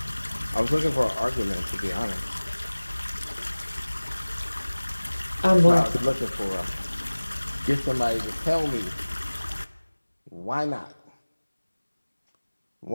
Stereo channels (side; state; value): both; inverted; correlation -1.00